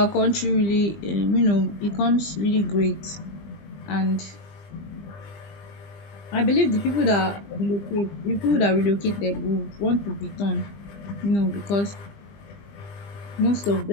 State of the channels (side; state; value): right; late; 20 ms